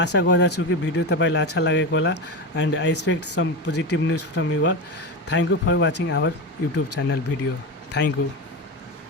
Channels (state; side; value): normal; both; correlation 0.19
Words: गर्दछु कि भिडियो तपाईँलाई अच्छा लागेको होला and I expect some positive news from you all. Thank you for watching our YouTube channel video. Thank you.